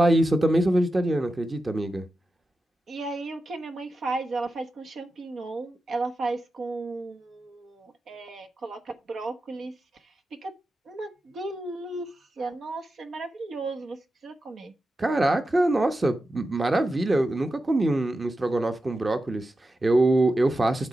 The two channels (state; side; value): normal; both; correlation 0.91